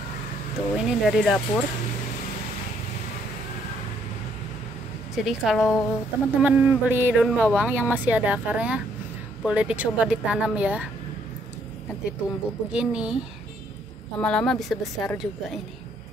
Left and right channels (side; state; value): both; normal; correlation 0.69